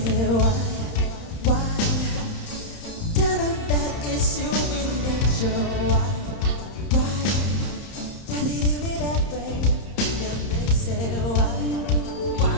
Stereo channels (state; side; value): late; right; 30 ms